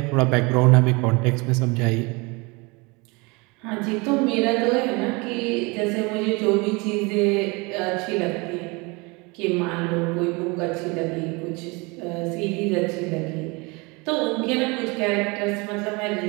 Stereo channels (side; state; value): left; quieter; 27.1 dB